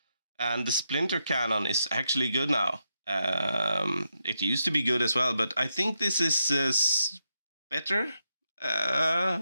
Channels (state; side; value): inverted; both; correlation -0.84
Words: And the Splinter Cannon is actually good now. It used to be good as well, but I think this is better.